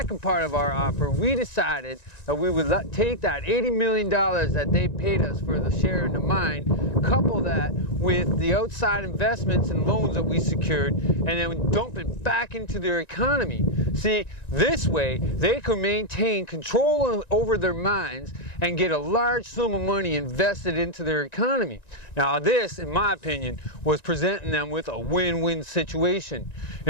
part of our offer, we decided that we would take that $80 million that they paid us for the share in the mine, couple that with the outside investments and loans that we secured, and then dump it back into their economy. See, this way, they could maintain control over their mines and get a large sum of money invested into their economy. Now, this, in my opinion, was presenting them with a win-win situation.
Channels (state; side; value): late; right; 1.9 ms